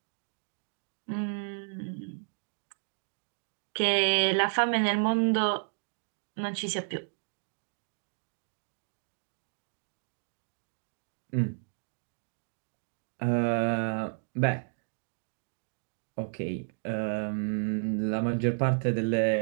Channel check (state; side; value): silent; left; digital silence